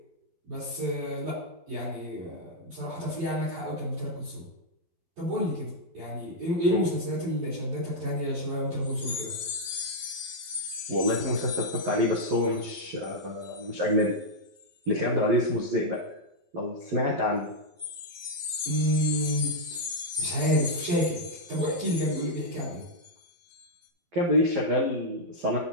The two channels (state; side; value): late; left; 12 ms